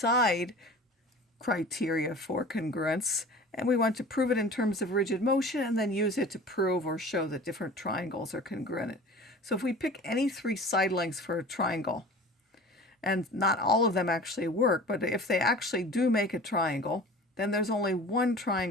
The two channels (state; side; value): normal; both; correlation 0.40